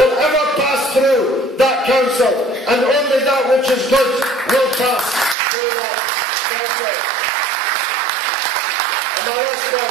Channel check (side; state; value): left; drops out; at 5.4 s